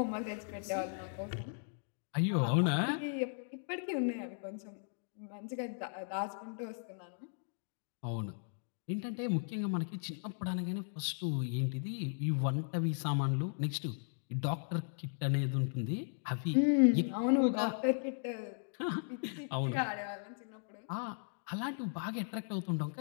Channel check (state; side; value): silent; right; digital silence